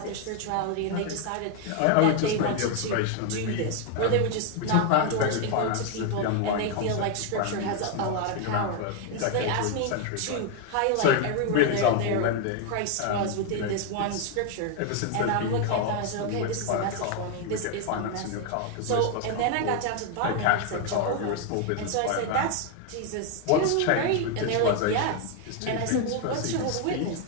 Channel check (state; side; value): different; both; correlation 0.01